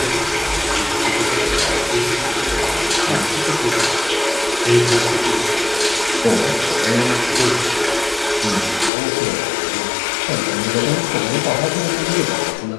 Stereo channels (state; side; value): drops out; right; at 8.9 s